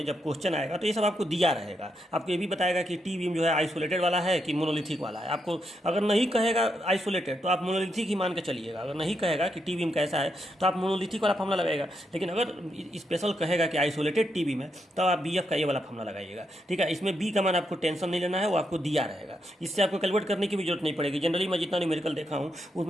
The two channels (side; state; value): both; normal; correlation 0.81